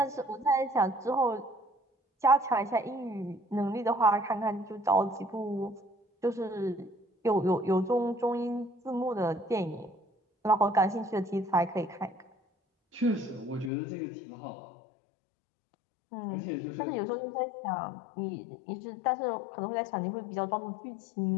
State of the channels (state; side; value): drops out; right; at 13.7 s